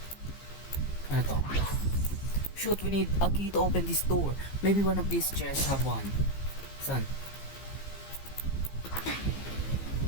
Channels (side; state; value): right; late; 15 ms